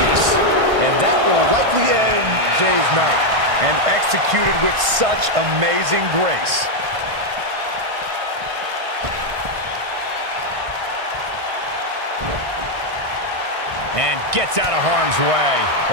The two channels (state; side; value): late; left; 1.5 ms